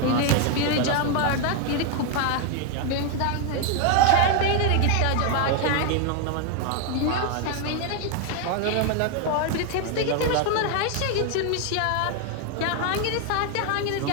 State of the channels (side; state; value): both; different; correlation 0.01